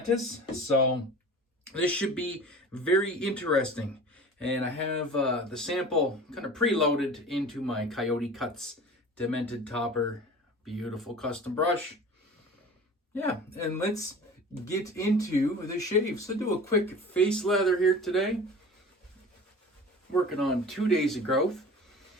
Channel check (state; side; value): normal; both; correlation 0.39